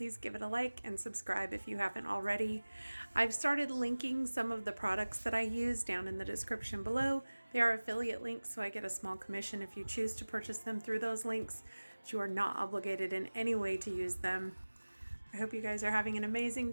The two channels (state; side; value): inverted; both; correlation -1.00